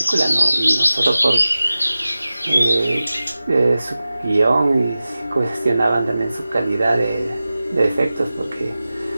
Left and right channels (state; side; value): inverted; both; correlation -0.95